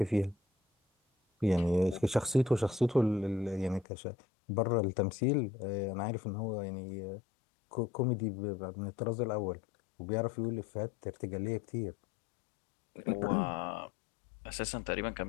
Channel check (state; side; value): drops out; right; at 3.9 s